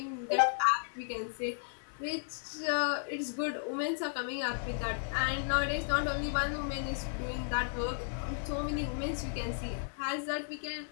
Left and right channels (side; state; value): right; silent; 55 dB below the other